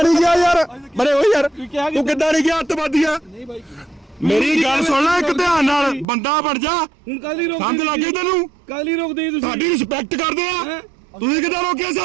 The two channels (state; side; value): drops out; left; at 6.1 s